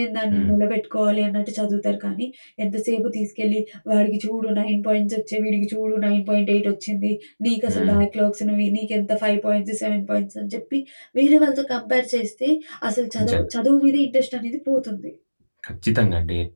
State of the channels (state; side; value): inverted; both; correlation -1.00